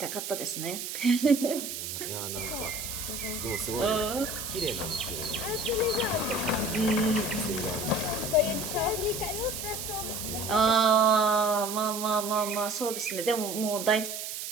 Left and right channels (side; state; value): right; noise; hiss, 6 dB below the sound